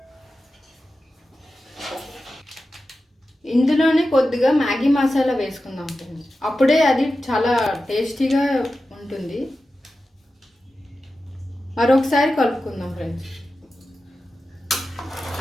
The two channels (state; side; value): normal; both; correlation 0.93